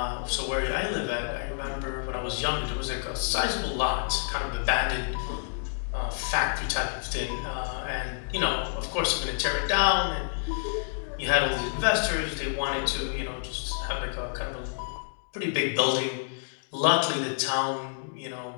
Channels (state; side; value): silent; right; digital silence